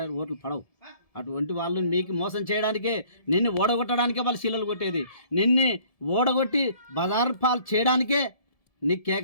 ఓట్లు పడవు. అటువంటి వాళ్ళు మీకు మోసం చేయడానికే, నిన్ను ఓడగొట్టడానికే వాళ్ళు శీలలు కొట్టేది, నిన్ను ఓడగొట్టి బజార్ పాలు చేయడానికే నీకు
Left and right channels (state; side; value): late; right; 1.7 ms